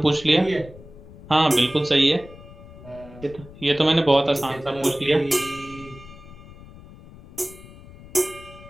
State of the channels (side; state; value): left; noise; rumble, 19 dB below the sound